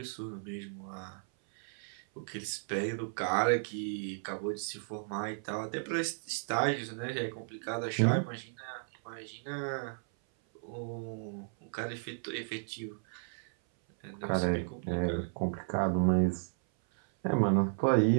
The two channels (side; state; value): left; silent; 55 dB below the other